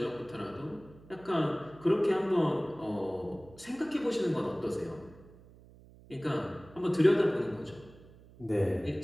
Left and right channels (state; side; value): noise; right; hum, 22 dB below the sound